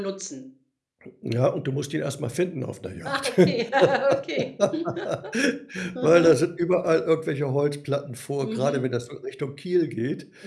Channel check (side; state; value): both; identical; correlation 1.00